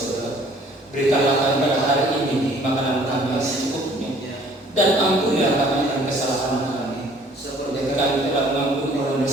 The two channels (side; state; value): both; normal; correlation 0.56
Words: Berikanlah kami pada hari ini makanan kami yang secukupnya, dan ampunilah kami akan kesalahan kami, seperti kami telah mengampuni orang